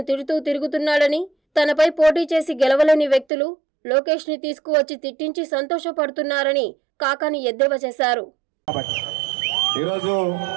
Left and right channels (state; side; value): drops out; left; at 3.2 s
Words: తిడుతూ తిరుగుతున్నాడని, తనపై పోటీ చేసి గెలవలేని వ్యక్తులు లోకేష్ ని తీసుకువచ్చి తిట్టించి సంతోషపడుతున్నారని కాకాని ఎద్దేవా చేశారు. ఈరోజు